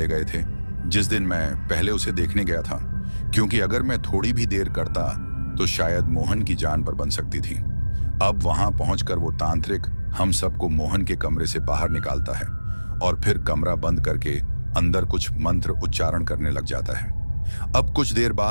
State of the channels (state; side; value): inverted; both; correlation -1.00